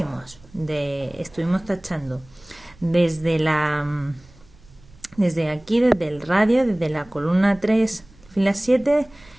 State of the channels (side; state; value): right; noise; rumble, 26 dB below the sound